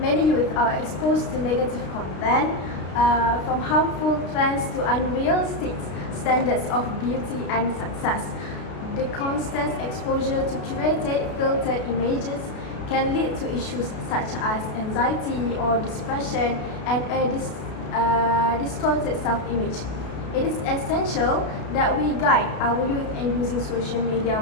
youth are exposed to negative content, from harmful trends to unrealistic standards of beauty and success. The constant exposure to curated, filtered images can lead to issues such as anxiety or depression and a distorted self-image. It is essential that we guide our youth in using social media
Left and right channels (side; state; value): right; late; 33 ms